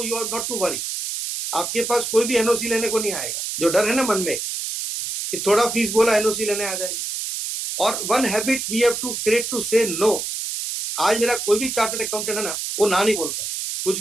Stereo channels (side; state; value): right; noise; hiss, 4 dB below the sound